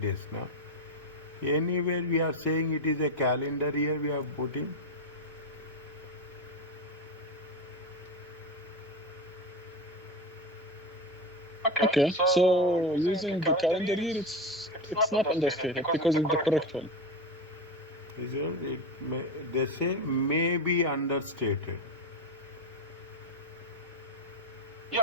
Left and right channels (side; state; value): both; normal; correlation 0.17